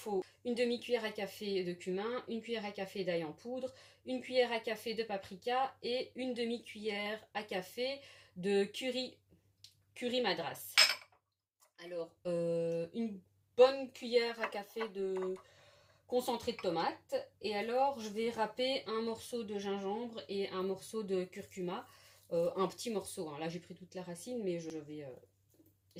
une demi-cuillère à café de cumin, une cuillère à café d'ail en poudre, une cuillère à café de paprika et une demi-cuillère à café de curry madras. Alors, une bonne cuillère à café de concentré de tomate. Et alors, je vais râper un morceau de gingembre et un morceau de curcuma. Un petit morceau, hein. Là, j'ai pris toute la racine, mais je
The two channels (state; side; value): identical; both; correlation 1.00